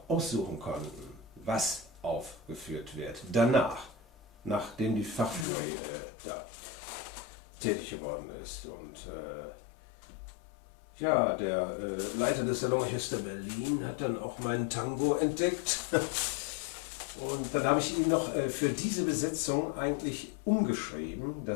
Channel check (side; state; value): right; drops out; at 5.5 s